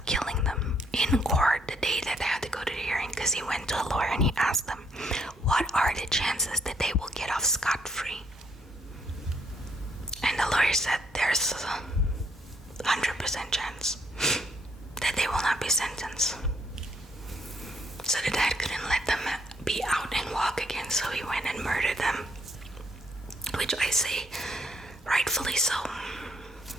killing them in court the day that they had to go to the hearing, because he went to a lawyer and he asked them, what are the chances that they will get off scot-free? And the lawyer said there's a 100% chance that they will not be sentenced. So the dad couldn't let them be out and walk again, so he went and murdered them, which I say rightfully so.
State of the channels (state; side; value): normal; both; correlation 0.70